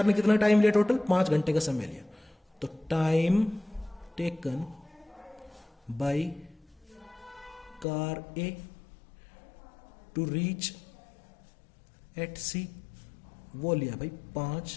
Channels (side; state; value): right; drops out; at 7.9 s